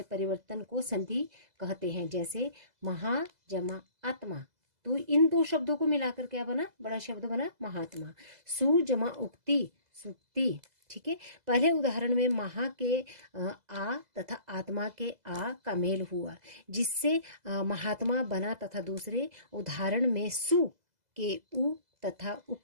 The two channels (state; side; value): late; left; 2.0 ms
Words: परिवर्तन को संधि कहते हैं। जैसे महा जमा आत्मा, तो इन 2 शब्दों को मिलाकर क्या बना, बड़ा शब्द बना महात्मा। सु जमा उक्ति, सुक्ति। ठीक है, पहले उदाहरण में महा के आ तथा आत्मा के आ का मेल हुआ, जिससे महात्मा बना, तथा दूसरे उदाहरण में सु के उ तथा